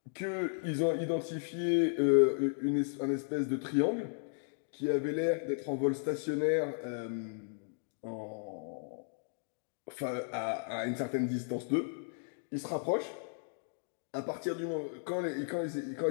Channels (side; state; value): right; silent; digital silence